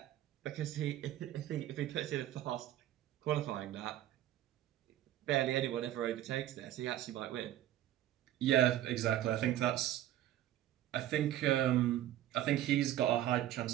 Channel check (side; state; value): left; quieter; 12.8 dB